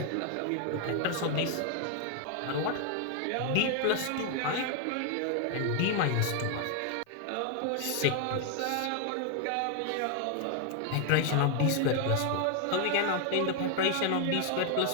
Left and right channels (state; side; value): different; both; correlation 0.00